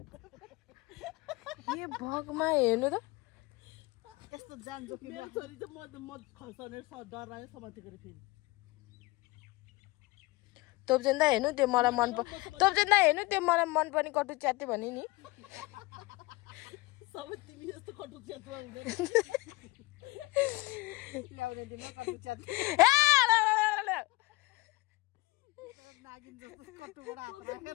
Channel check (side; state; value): right; quieter; 21.9 dB